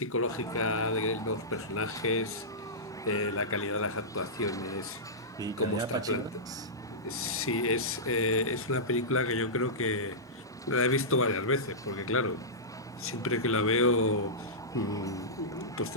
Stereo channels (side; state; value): both; normal; correlation -0.15